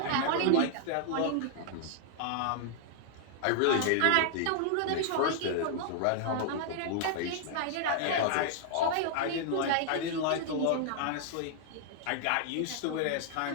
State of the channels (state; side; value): different; both; correlation -0.01